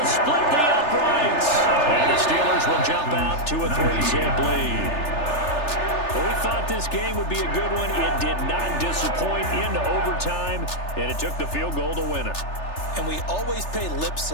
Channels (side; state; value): right; late; 3.3 ms